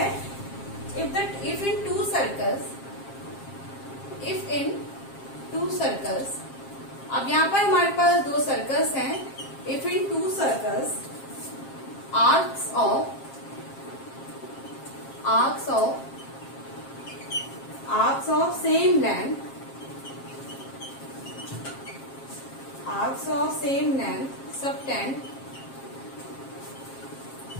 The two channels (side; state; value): right; late; 7.5 ms